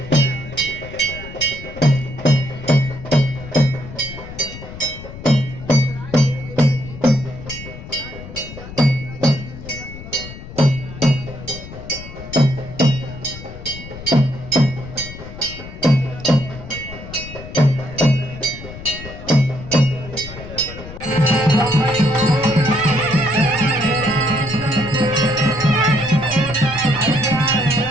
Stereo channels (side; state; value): left; noise; rumble, 13 dB below the sound